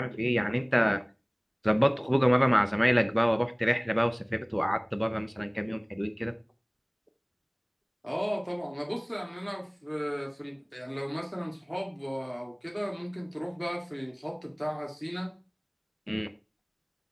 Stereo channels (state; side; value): identical; both; correlation 1.00